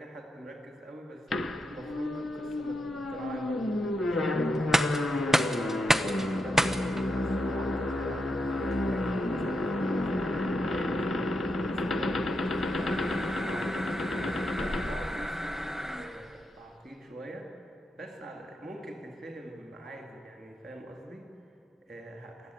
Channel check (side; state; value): both; normal; correlation 0.84